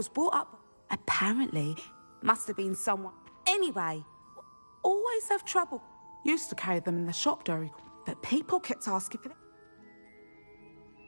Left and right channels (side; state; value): both; inverted; correlation -1.00